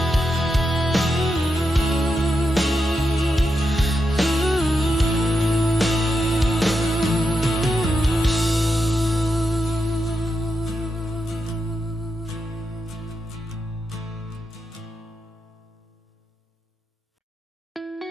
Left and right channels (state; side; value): normal; both; correlation 0.86